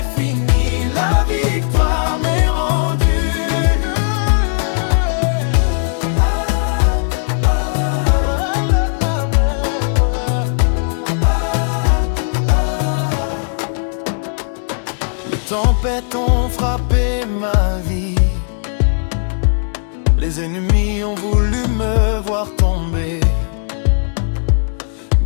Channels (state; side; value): silent; right; digital silence